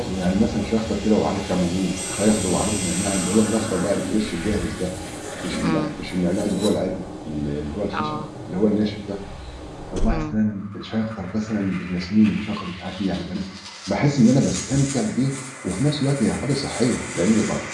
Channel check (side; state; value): both; identical; correlation 1.00